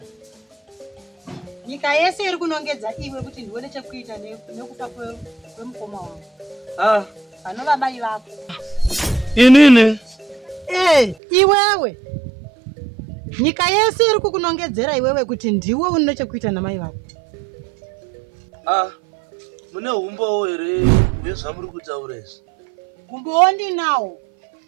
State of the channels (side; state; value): left; drops out; at 11.2 s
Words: nyika yese iri kunongedza iwe kuti ndione chekuita nekufa kwemukoma wangu. Panova mai vako. Inini? Iwewe. Nyika yese iri kukunongedzera iwewe kuti ndiwe une chekuita namai vako. Mune humbowo here hwezvamuri kutaura izvi? Humbowo ndinawo.